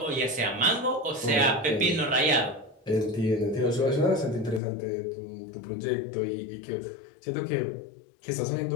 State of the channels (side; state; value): right; drops out; at 4.6 s